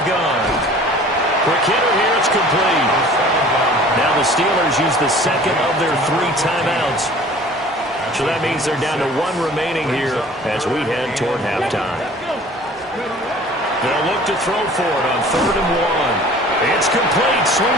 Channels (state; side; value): normal; both; correlation 0.47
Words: gun. Quick hitter here, it's complete. Now the Steelers use the 2nd of their 3 timeouts. So that means they're down to 1 remaining here as we head toward halftime. They'll look to throw for it on 3rd and 1. It's complete,